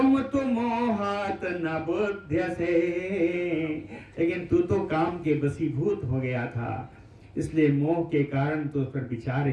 तो मोहात न बुध्यसे। लेकिन तू तो काम के वशीभूत हो गया था, इसलिए मोह के कारण तो उस पर विचार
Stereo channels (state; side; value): identical; both; correlation 1.00